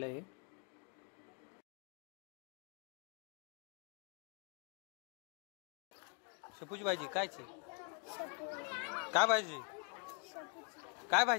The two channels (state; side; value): quieter; right; 37.2 dB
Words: आहे। शेपूची भाजी कायची? काय भाजी? काय